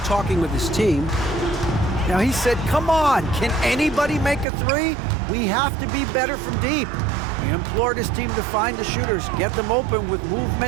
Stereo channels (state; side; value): drops out; left; at 4.5 s